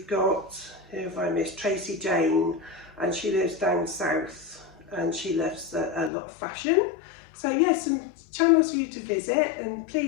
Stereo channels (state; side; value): drops out; right; at 6.1 s